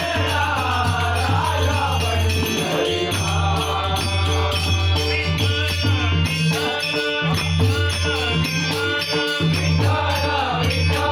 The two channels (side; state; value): both; identical; correlation 1.00